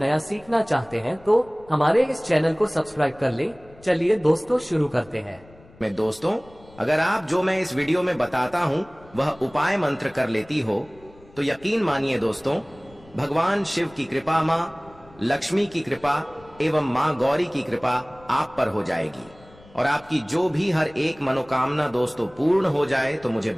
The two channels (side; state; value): left; noise; rumble, 25 dB below the sound